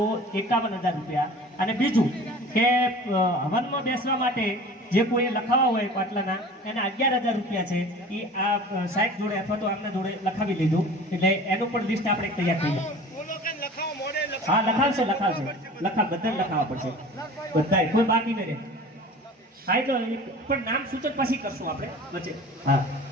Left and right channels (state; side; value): normal; both; correlation 0.41